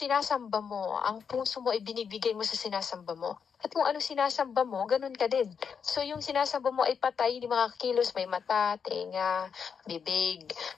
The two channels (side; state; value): right; quieter; 6.6 dB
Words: mo, ang puso mo ay binibigay mo sa sinasamba mo. At kung ano sinasamba mo, ganun ka din. So yung sinasamba mo ay patay, hindi makakilos, may mata, tenga, bibig.